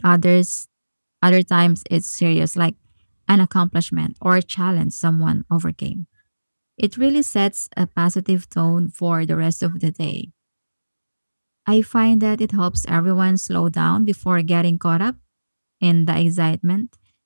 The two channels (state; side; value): inverted; both; correlation -1.00